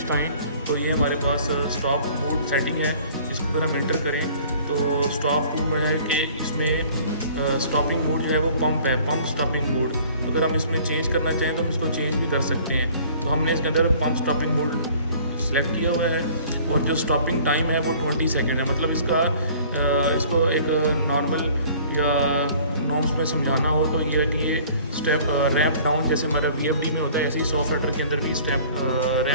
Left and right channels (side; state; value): both; inverted; correlation -0.51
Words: आएँ तो ये हमारे पास स्टॉप मोड सेटिंग है, इसको अगर हम एंटर करें तो स्टॉप टू है कि इसमें स्टॉपिंग मोड जो है वो पंप है, पंप स्टॉपिंग मोड। तो अगर हम इसमें चेंज करना चाहें तो हम इसको चेंज भी कर सकते हैं। तो हमने इसके अंदर पंप स्टॉपिंग मोड सेलेक्ट किया हुआ है, और जो स्टॉपिंग टाइम है वो 20 सेकेंड है। मतलब इसको एक नॉर्मल या नॉर्म्स में समझाना हो तो ये है कि ये स्टेप रैंप डाउन, जैसे हमारा VFD में होता है, ऐसे ही सॉफ्टवेयर के अंदर भी स्टेप